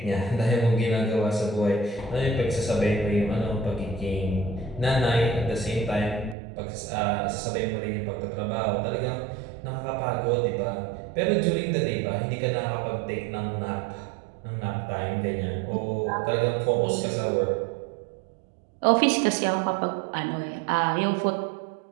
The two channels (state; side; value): drops out; left; at 6.4 s